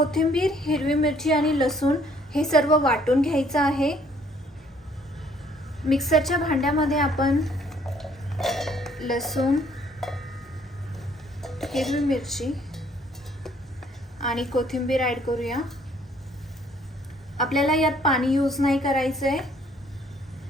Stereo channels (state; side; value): normal; both; correlation 0.63